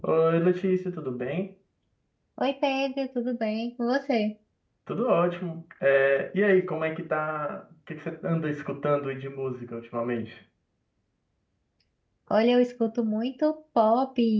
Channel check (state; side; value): identical; both; correlation 1.00